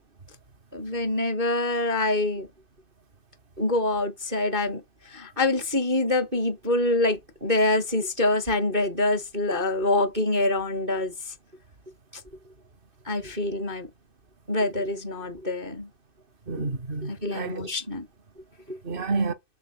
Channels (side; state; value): left; late; 2.6 ms